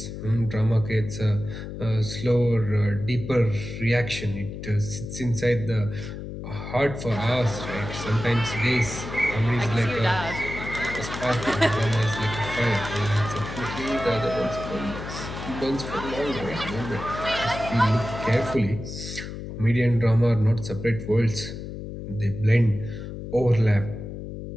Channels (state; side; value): noise; left; hum, 8 dB below the sound